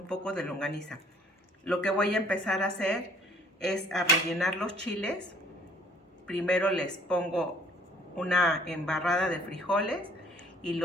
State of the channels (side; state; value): both; normal; correlation 0.57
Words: poco de longaniza. Lo que voy a empezar a hacer es a rellenar los chiles. Primero les pongo una embarrada de frijoles y